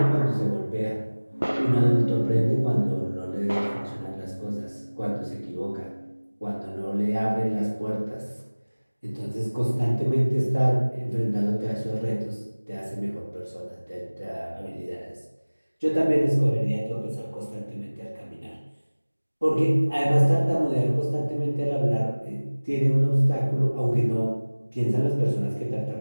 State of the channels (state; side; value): inverted; both; correlation -1.00